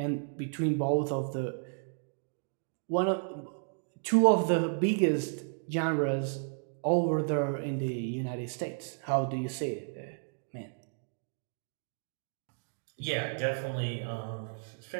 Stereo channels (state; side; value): silent; left; digital silence